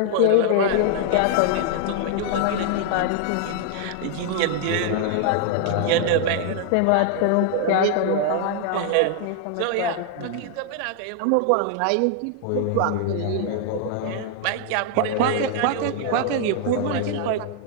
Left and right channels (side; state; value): both; different; correlation 0.00